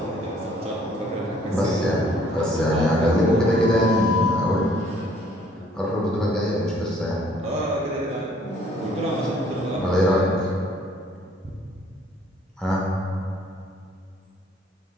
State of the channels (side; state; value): both; normal; correlation 0.60